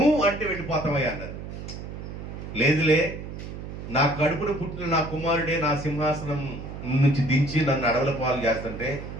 అంటే వెళ్ళిపోతావయ్యా అన్నారు. లేదులే, నా కడుపును పుట్టిన నా కుమారుడే నా సింహాసనం నుంచి దించి నన్ను అడవుల పాలు చేస్తుంటే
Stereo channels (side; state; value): right; noise; hum, 9 dB below the sound